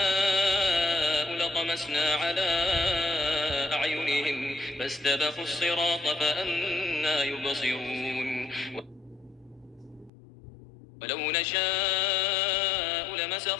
لطمسنا على أعينهم فاستبقوا الصراط فأنى يبصرون ولو نشاء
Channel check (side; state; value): right; drops out; at 10.1 s